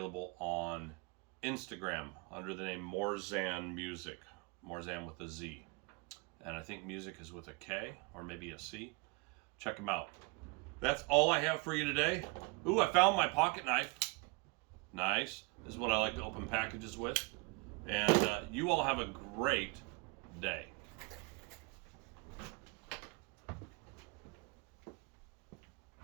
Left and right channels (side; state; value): left; quieter; 29.1 dB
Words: on Instagram under the name Morzan Music. Morzan with a Z. And I think music is with a K or maybe a C. Check them out. That's all I have for you today. Ooh, I found my pocket knife. Nice. This is what I like to open packages with. And you all have a great day.